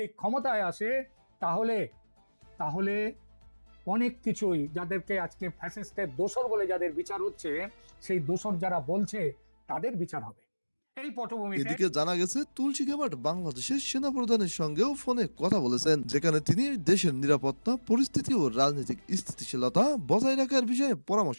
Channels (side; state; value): both; inverted; correlation -1.00